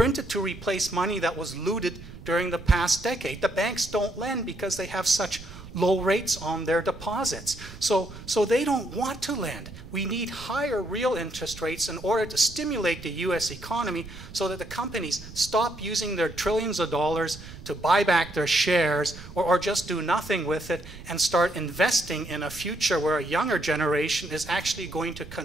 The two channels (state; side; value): noise; right; rumble, 15 dB below the sound